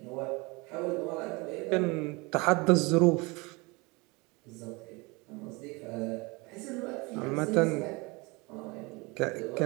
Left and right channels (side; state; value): left; quieter; 26.2 dB